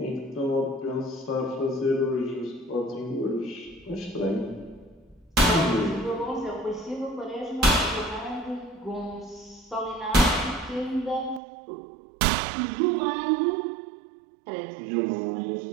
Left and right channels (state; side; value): drops out; left; at 11.4 s